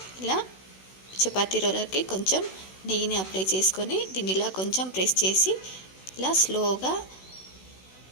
ఇలా చపాతీ రోలర్కి కొంచెం నెయ్యిని అప్లై చేసుకొని దీన్ని ఇలా కొంచెం ప్రెస్ చేసి ఇలా స్లోగా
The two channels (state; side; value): late; right; 16 ms